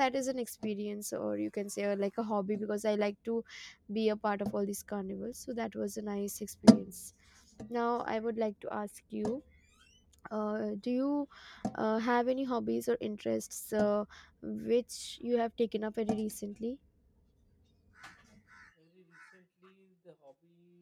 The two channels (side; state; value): both; identical; correlation 1.00